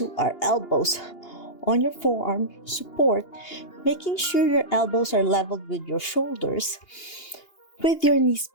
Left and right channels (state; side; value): late; right; 2.8 ms